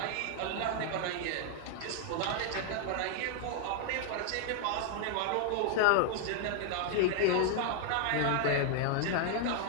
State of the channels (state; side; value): different; both; correlation 0.00